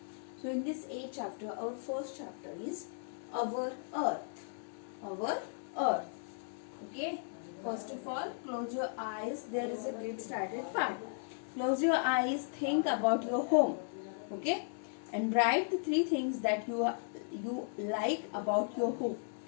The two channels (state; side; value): silent; right; digital silence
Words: so in this 8 chapter, our first chapter is our Earth. Our Earth. Okay, first of all, close your eyes. There is a get started part. Close your eyes, think about your home. Okay, and write the 3 things that you like about your home.